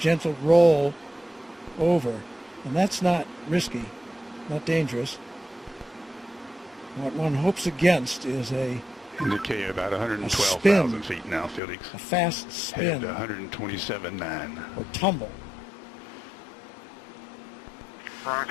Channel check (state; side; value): drops out; right; at 11.6 s